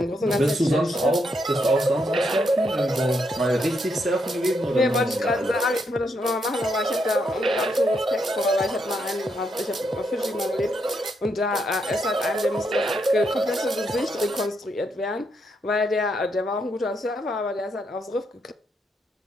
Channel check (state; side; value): normal; both; correlation 0.78